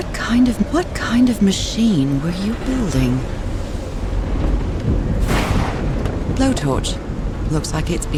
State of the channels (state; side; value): identical; both; correlation 1.00